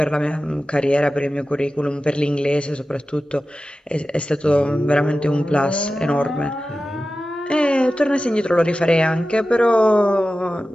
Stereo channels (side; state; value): both; normal; correlation 0.94